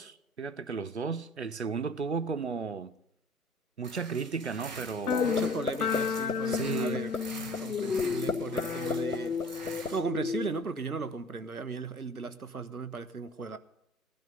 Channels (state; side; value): normal; both; correlation 0.46